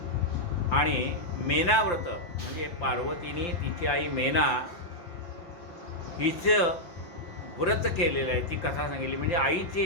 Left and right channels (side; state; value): right; late; 5.8 ms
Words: आणि मेनाव्रत म्हणजे पार्वतीने तिची आई मेना हिचं व्रत केलेलं आहे, ती कथा सांगितली. म्हणजे